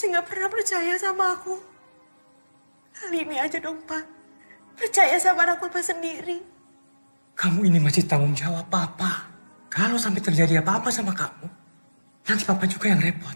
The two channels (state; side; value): inverted; both; correlation -1.00